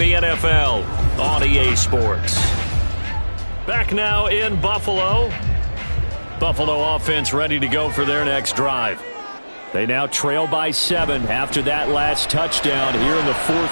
NFL on EA Sports. Back now in Buffalo. Buffalo offense ready to go for their next drive. They now trail by 7 after that last touchdown here in the fourth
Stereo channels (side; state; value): both; inverted; correlation -1.00